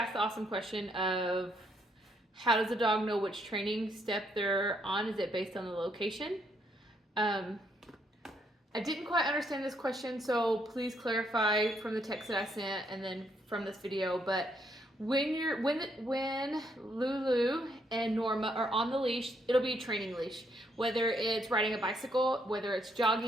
the awesome question of how does a dog know which training step they're on? Is it based on the location? I didn't quite understand this question, so please clarify from the text that I sent and then from this video. But when Lulu and Norma are on the leash, it'll be a training leash. Whether it's riding a bicycle, whether it's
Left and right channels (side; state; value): both; normal; correlation 0.73